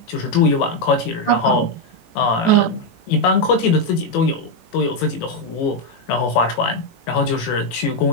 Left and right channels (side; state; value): right; late; 18 ms